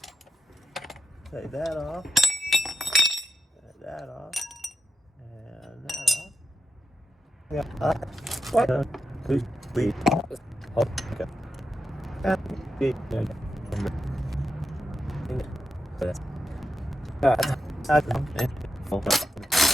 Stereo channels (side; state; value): both; normal; correlation 0.88